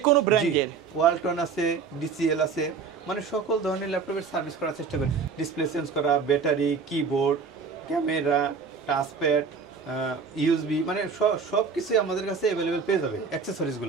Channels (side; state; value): left; quieter; 5.4 dB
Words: কোনো ব্র্যান্ডের ওয়ালটন আছে, ডিসিএল আছে, মানে সকল ধরনের ল্যাপটপের সার্ভিস করার চেষ্টা করি। ডিসপ্লে চেঞ্জ করা, battery, keyboard, camera, touchpad, USB, মানে সব কিছুই আমাদের কাছে অ্যাভেলেবেল পেয়ে যাবে।